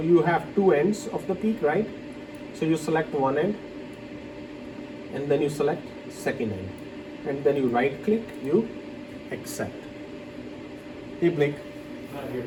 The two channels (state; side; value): identical; both; correlation 1.00